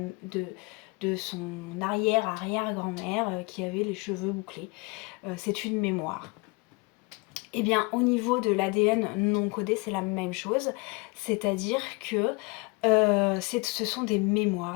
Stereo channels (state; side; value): quieter; right; 28.3 dB